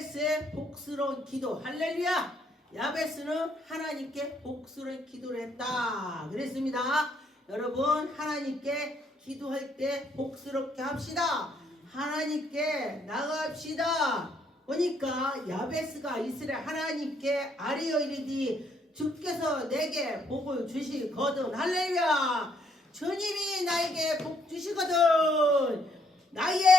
복스러운 기도. 할렐루야. 야베스는 하나님께 복스러운 기도를 했다 그랬습니다. 여러분, 하나님께 기도할 때 복스럽게 합시다. 하나님께 나갑시다. 보니까 야베스가 이스라엘 하나님께 아뢰어 이르되 주께서 내게 복을 주시거든. 할렐루야. 주님이 나에게 복 주시거든.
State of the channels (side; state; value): both; normal; correlation 0.70